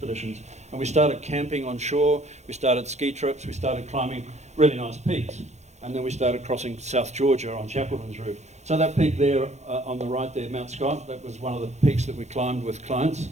And we started camping on shore, we started ski trips, we started climbing really nice peaks. And then we started crossing South Georgia on Shackleton's route. So that peak there on the right there, Mount Scott, that was one of the peaks that we climbed with clients,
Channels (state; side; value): late; left; 0.33 ms